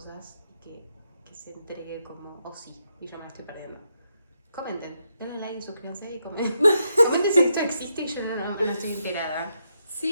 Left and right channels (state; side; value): inverted; both; correlation -0.81